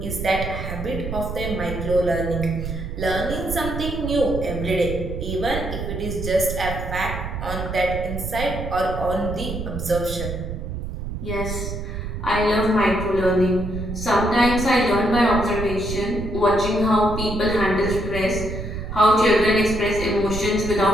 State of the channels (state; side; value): noise; right; rumble, 6 dB below the sound